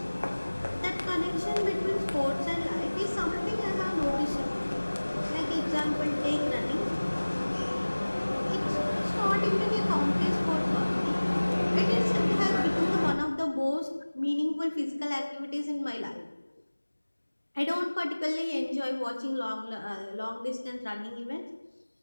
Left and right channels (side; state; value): both; inverted; correlation -1.00